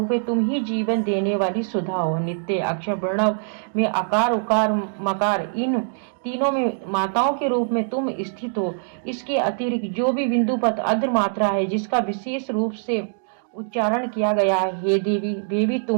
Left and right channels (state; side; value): silent; left; digital silence